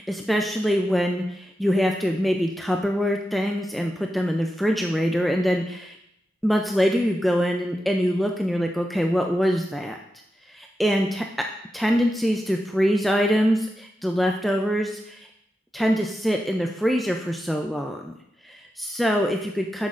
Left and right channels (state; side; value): normal; both; correlation 0.89